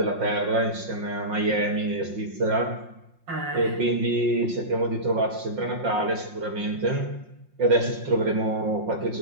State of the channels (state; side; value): late; left; 5.6 ms